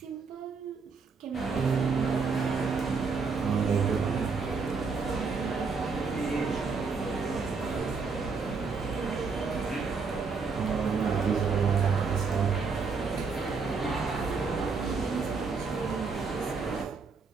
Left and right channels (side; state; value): left; quieter; 4.8 dB